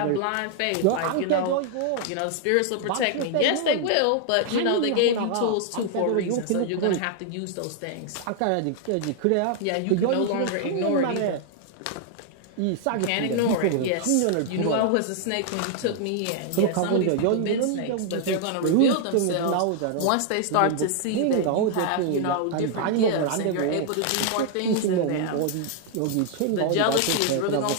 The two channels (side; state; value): both; different; correlation 0.00